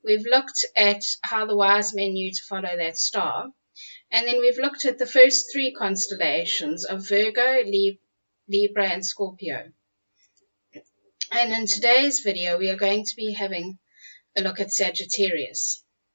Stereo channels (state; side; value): inverted; both; correlation -1.00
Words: We've looked at how the wise men knew to follow that star. And then we've looked at the first three constellations of Virgo, Libra, and Scorpio. And in today's video, we are going to be having a look at Sagittarius.